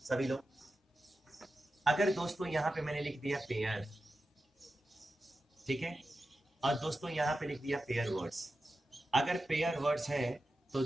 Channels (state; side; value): normal; both; correlation 0.92